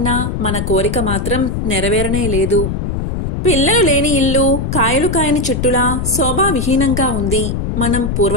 మన కోరిక మాత్రం నెరవేరనే లేదు. పిల్లలు లేని ఇల్లు కాయలు కాయని చెట్టులా శోభావిహీనంగా ఉంది. మనం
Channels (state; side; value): noise; left; rumble, 2 dB below the sound